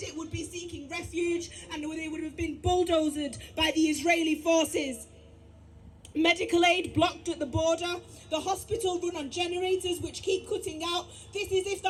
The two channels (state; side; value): identical; both; correlation 1.00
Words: it would be seeking refuge, and they would have been bulldozed by the Israeli forces. Medical aid blocked at the border. The hospital run on generators which keep cutting out. This is if the